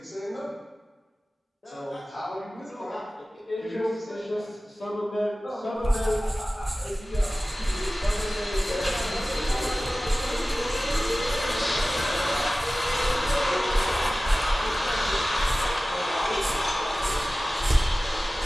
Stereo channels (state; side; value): normal; both; correlation 0.96